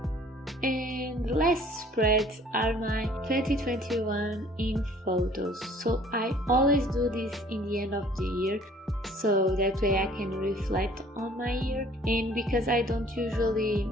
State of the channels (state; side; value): normal; both; correlation 0.54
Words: And the last spreads are my 2021 in photos. So I always do this in the end of the year, so that way I can reflect on my year. And because I don't usually